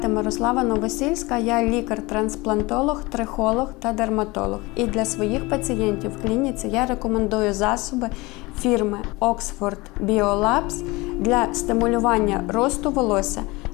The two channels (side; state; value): right; quieter; 23.1 dB